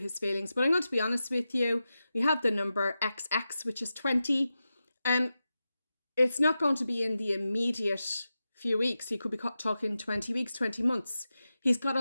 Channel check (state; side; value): inverted; both; correlation -0.92